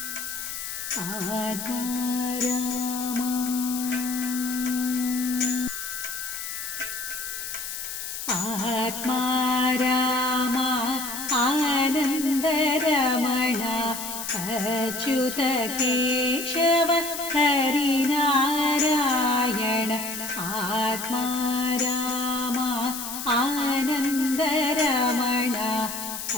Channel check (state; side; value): noise; left; hiss, 7 dB below the sound